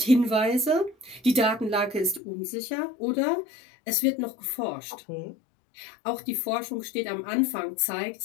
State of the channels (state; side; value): drops out; right; at 2.2 s